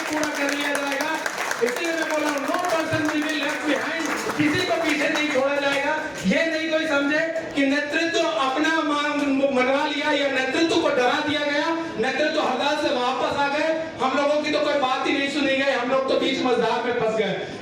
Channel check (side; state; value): both; identical; correlation 1.00